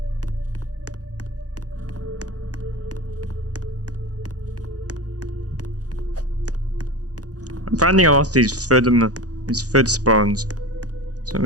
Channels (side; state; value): left; late; 0.67 ms